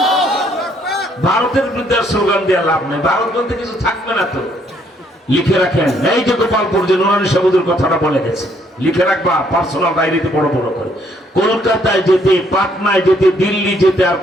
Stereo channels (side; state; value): both; normal; correlation 0.68